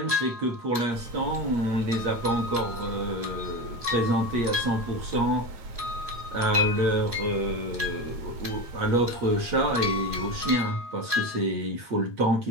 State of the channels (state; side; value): late; left; 8.6 ms